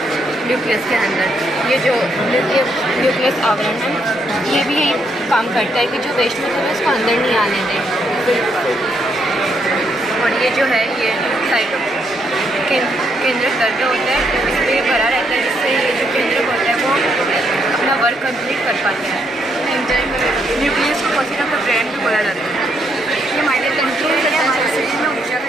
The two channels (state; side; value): normal; both; correlation 0.75